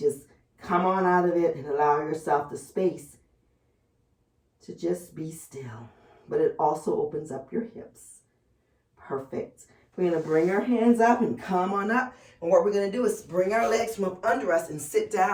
come on out of it and allow yourself the space to just be still. But it also opens up your hips. Perfect. We're going to bring our hands up and come on up. And what we're going to do is bring our legs from up under us and sit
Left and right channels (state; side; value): identical; both; correlation 1.00